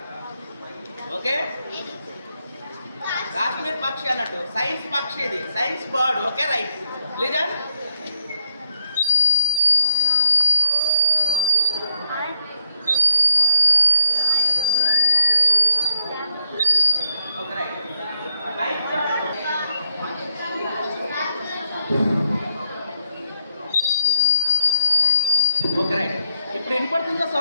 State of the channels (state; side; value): inverted; both; correlation -0.77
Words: ఓకే, కాశ్మీర్ పక్షి అన్నట్టు సైన్స్ పక్షి, ఇది science bird. Okay right. Listen. Okay right. Okay right. ఇప్పుడు వినపడుతుందా